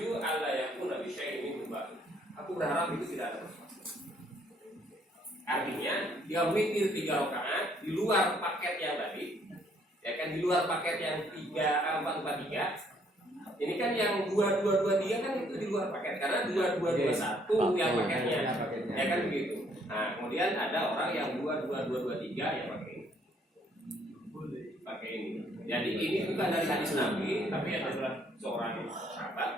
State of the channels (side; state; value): both; normal; correlation 0.66